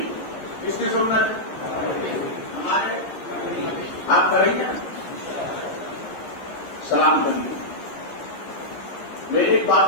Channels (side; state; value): right; late; 13 ms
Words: کس کی سنت؟ ہمارے. آپ کریں گے سلام کریں. میں ایک